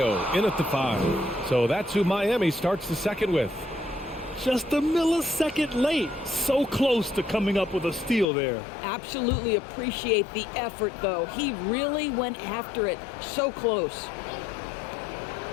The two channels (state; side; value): drops out; right; at 8.2 s